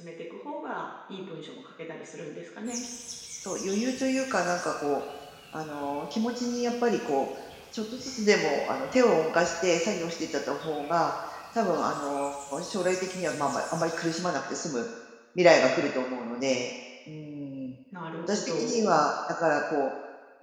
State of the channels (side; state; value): both; identical; correlation 1.00